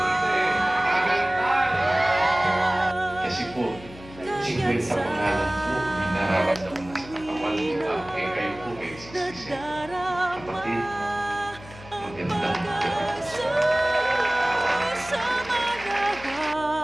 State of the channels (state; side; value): noise; left; hum, 18 dB below the sound